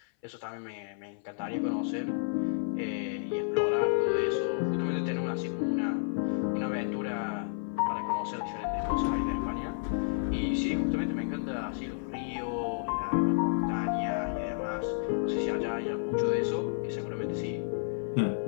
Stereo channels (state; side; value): silent; right; 57 dB below the other